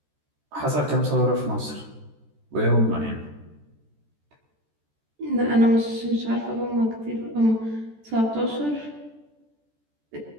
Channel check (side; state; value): left; late; 14 ms